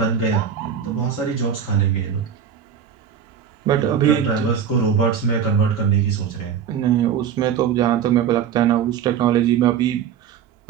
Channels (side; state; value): left; quieter; 8.0 dB